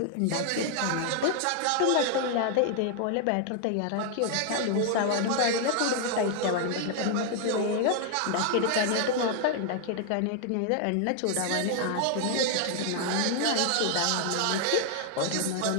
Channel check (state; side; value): different; both; correlation 0.00